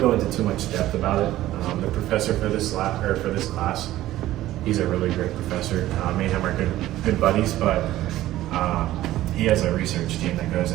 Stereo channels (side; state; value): left; quieter; 14.9 dB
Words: into too much depth about it. The professor for this lab or for this class, he's a really great professor. Me and him are good buddies, but he has a research team that goes